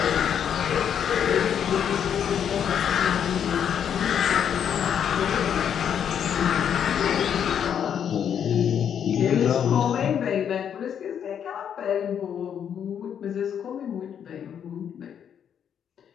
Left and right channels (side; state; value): right; quieter; 8.6 dB